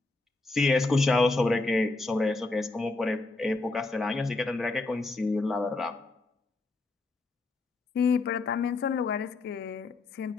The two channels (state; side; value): quieter; right; 3.3 dB